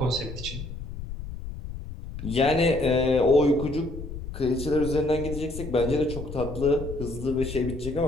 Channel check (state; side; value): noise; left; rumble, 9 dB below the sound